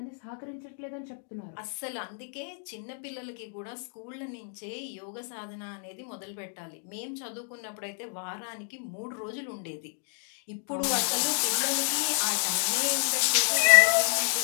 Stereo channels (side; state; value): right; silent; 58 dB below the other